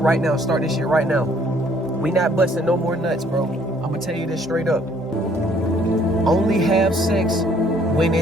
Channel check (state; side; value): normal; both; correlation 0.62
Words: now, start this shit right now. We not busting no more nuts, bro. I'm gonna tell you this straight up. Only have sex when